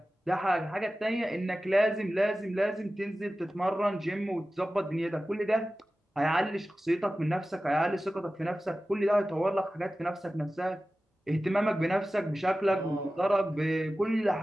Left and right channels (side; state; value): both; normal; correlation 0.95